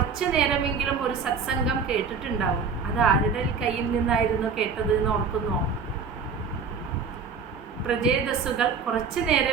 നേരമെങ്കിലും ഒരു സത്സംഗം കേട്ടിട്ടുണ്ടാവും. അത് ആരുടെ കയ്യിൽ നിന്നായിരുന്നു കേട്ടത് എന്ന് ഓർക്കുന്നോ? പ്രചേതസ്സുകൾ കുറച്ചു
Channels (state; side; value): quieter; left; 5.4 dB